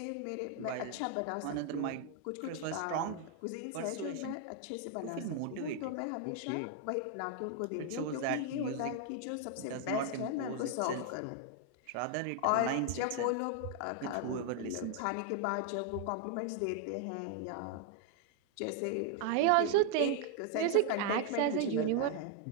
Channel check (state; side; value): different; both; correlation 0.01